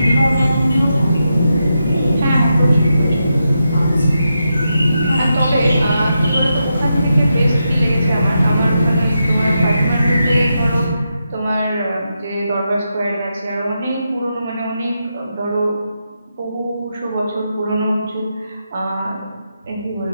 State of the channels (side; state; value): both; inverted; correlation -0.85